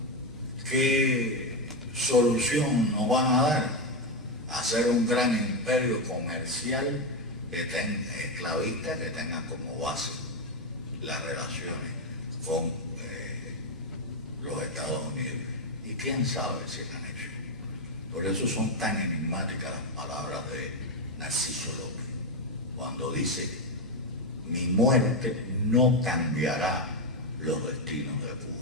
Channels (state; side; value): noise; right; hum, 25 dB below the sound